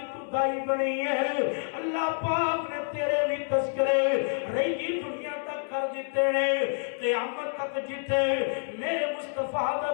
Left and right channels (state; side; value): silent; right; 59 dB below the other